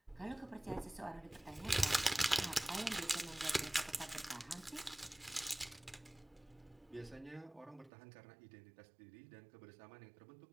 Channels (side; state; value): left; drops out; at 7.9 s